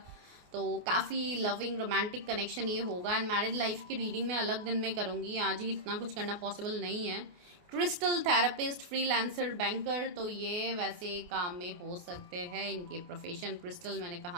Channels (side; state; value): left; late; 28 ms